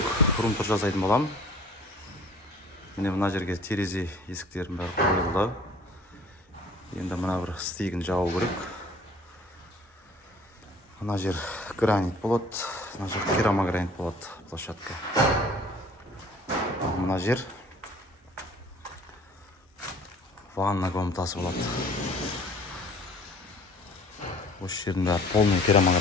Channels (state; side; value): normal; both; correlation 0.51